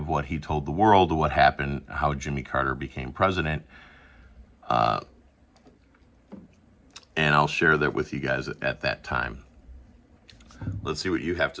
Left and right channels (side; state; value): both; identical; correlation 1.00